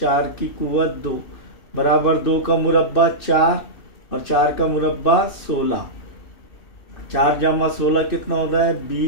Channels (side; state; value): right; late; 2.6 ms